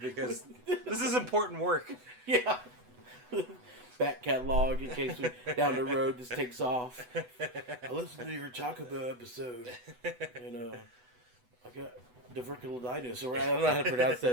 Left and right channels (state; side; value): late; left; 8.0 ms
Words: this is important work. Yeah. Back catalog in case down the road this takes off. I listened to your Taco Bell episode and I got diverticulitis, or I don't know how to pronounce